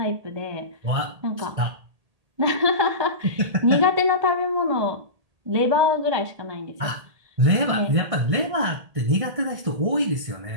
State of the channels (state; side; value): late; left; 1.8 ms